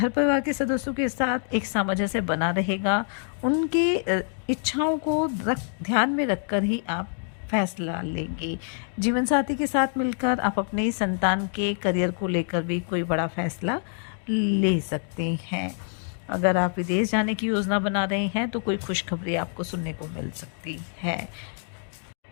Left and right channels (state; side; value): silent; right; 56 dB below the other